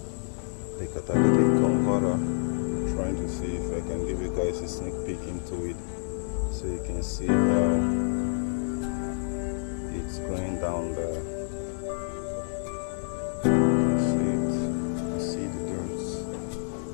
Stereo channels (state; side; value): silent; right; digital silence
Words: the catalytic converter. Trying to see if I can give you guys a sneak peek into it so you can see how it's going down there. See it, see the dirt.